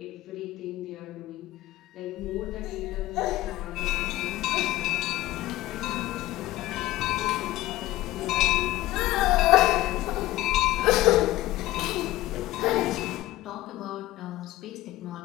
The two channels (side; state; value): right; quieter; 16.6 dB